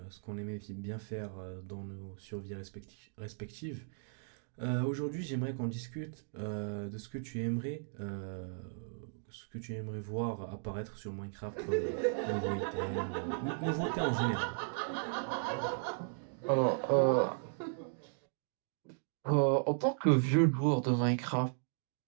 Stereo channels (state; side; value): silent; left; digital silence